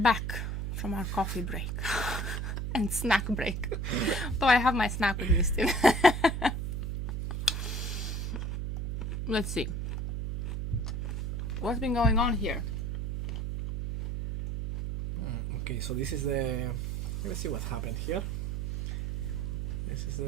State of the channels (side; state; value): right; noise; hum, 2 dB below the sound